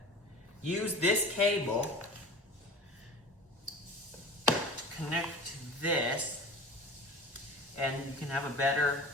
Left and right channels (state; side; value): normal; both; correlation 0.37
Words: use this cable to connect to this, and you can have a better